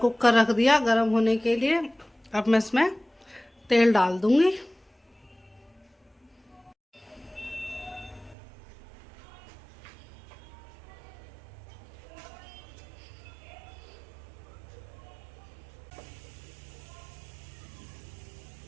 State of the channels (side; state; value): left; drops out; at 8.3 s